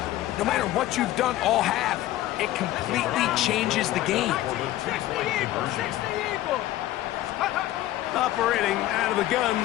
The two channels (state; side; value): quieter; right; 14.9 dB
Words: No matter what you've done all half, it completely changes the game. Operating out of the gun,